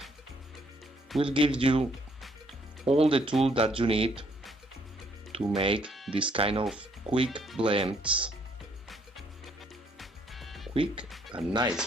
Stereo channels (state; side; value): normal; both; correlation 0.67